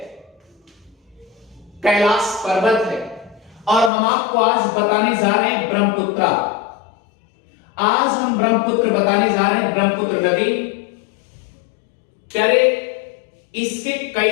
कैलाश पर्वत है, और हम आपको आज बताने जा रहे हैं ब्रह्मपुत्र। आज हम ब्रह्मपुत्र बताने जा रहे हैं, ब्रह्मपुत्र नदी प्यारे। इसके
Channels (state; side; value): drops out; right; at 3.9 s